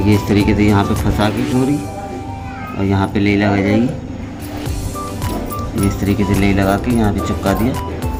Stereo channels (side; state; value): both; identical; correlation 1.00